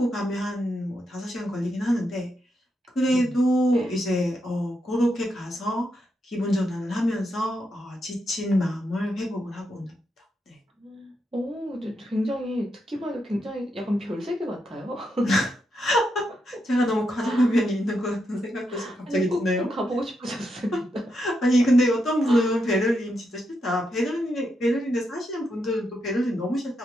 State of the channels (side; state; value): both; normal; correlation 0.82